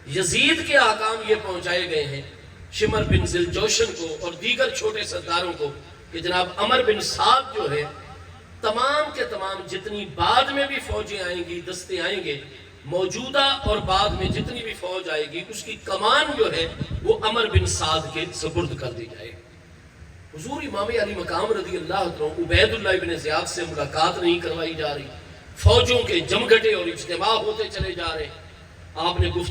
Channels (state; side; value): identical; both; correlation 1.00